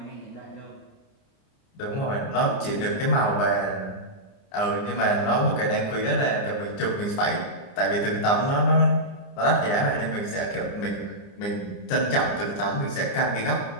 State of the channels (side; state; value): right; late; 29 ms